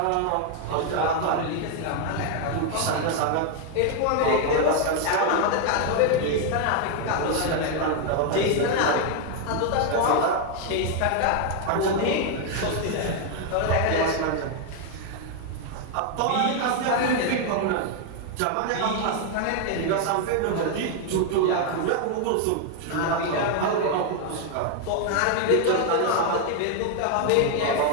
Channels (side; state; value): both; different; correlation 0.00